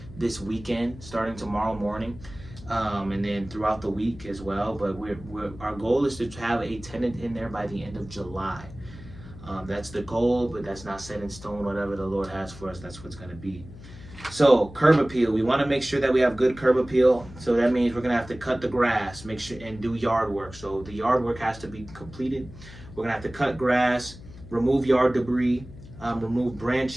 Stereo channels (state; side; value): noise; left; hum, 17 dB below the sound